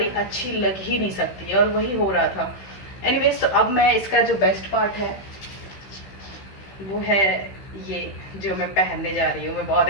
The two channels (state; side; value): late; right; 15 ms